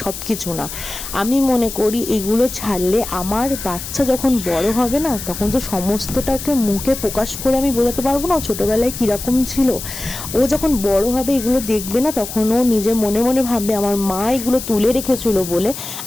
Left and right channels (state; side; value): noise; left; hiss, 9 dB below the sound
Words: সব কিছু না। আমি মনে করি এগুলো ছাড়লে আমার বাচ্চা যখন বড় হবে না, তখন তো সমস্তটাকে মুখে প্রকাশ করে আমি বোঝাতে পারবো না ও ছোটোবেলায় কীরকম ছিল। ও যখন বড় হবে এগুলো দেখবে না, তখন ও নিজে মনে মনে ভাববে আমার মা এগুলো তুলে রেখেছিল বলে